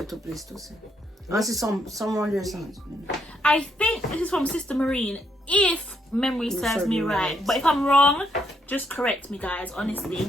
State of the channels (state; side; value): normal; both; correlation 0.74